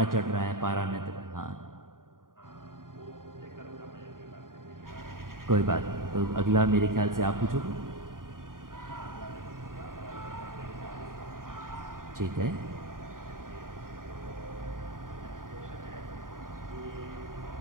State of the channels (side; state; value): left; late; 0.90 ms